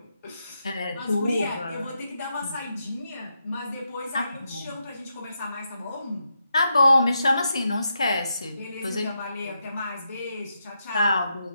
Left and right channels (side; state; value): both; inverted; correlation -0.84